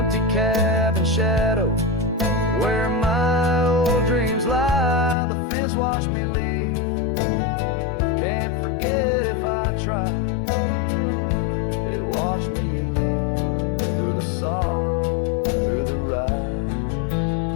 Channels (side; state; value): right; drops out; at 5.2 s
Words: cabin shadow where my old dreams lie, the fence watched me leave, can't forget if I try. It watched me leave through the sorrow, through the ride.